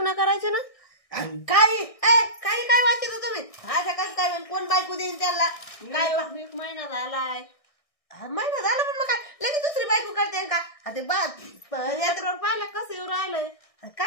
करायचे ना. काही काही काय वाटत तुम्ही असं कसं काय होईल? कोण बायको देईन त्याला काय एक महिना झालाय महिना झाला पण मग काय लगेच दुसरी बायको करते का? ते यात्रेवर पाहिलं कसं येऊ राहिलंय.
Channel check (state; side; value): late; right; 1.6 ms